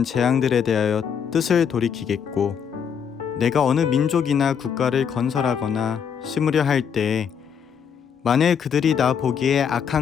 재앙들에 대하여 뜻을 돌이키겠고 내가 어느 민족이나 국가를 건설하거나 심으려 할 때에 만일 그들이 나 보기에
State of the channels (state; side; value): quieter; right; 7.4 dB